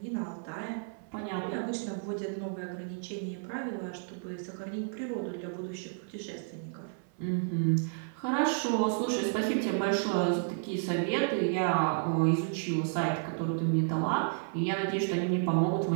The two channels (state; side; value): silent; left; 57 dB below the other